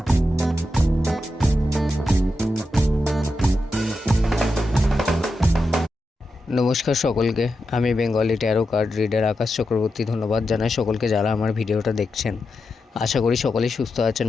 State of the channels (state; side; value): normal; both; correlation 0.88